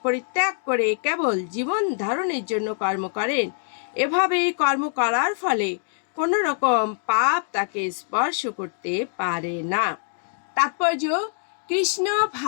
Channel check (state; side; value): silent; right; digital silence